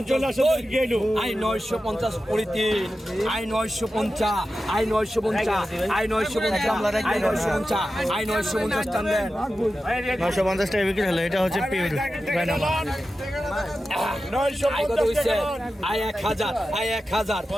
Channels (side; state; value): both; normal; correlation 0.92